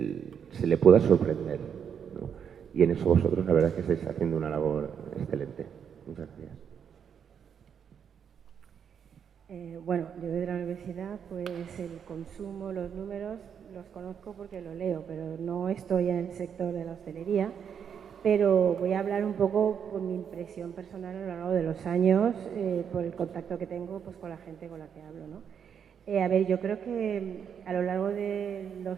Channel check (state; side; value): quieter; left; 7.7 dB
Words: se le pueda sorprender, ¿no? Y en eso vosotros la verdad es que estáis haciendo una labor excelente. Muchas gracias. Bueno, yo de la universidad, pues el consumo, los números, los conozco porque lo leo, pero no estoy en el sector de la hostelería. Pero voy a hablar un poco por mi impresión personal a lo largo de los años, por el contacto que tengo pues, con la gente con la que hablo, ¿no? A ver, yo creo que a lo largo de